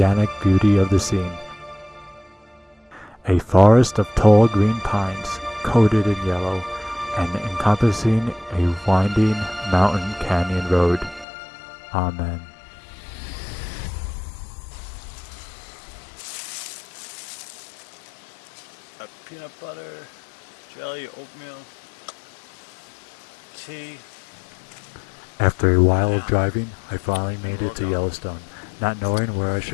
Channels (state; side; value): drops out; right; at 11.2 s